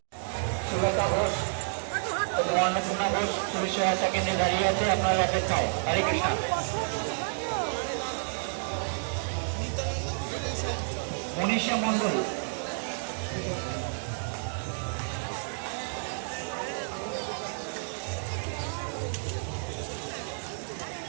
সুলতা ঘোষ, অন্নপূর্ণা ঘোষ পুলিশ সহায়তা কেন্দ্রে দাঁড়িয়ে আছে আপনার অপেক্ষায়। হরে কৃষ্ণ। মনীষা মন্ডল,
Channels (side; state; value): left; silent; digital silence